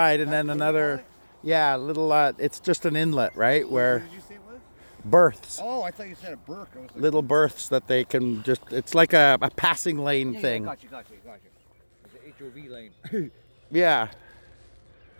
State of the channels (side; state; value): both; inverted; correlation -1.00